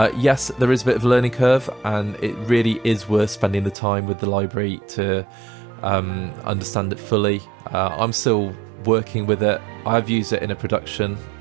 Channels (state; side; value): drops out; left; at 3.8 s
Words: Yes, there is a bit of a learning curve, and it really is worth spending the time with the library to understand it fully. I'm still working with it. I've used it in a production,